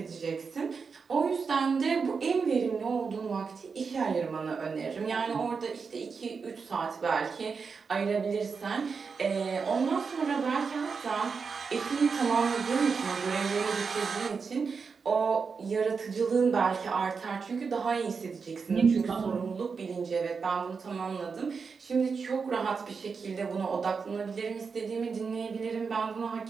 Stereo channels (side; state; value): left; quieter; 5.3 dB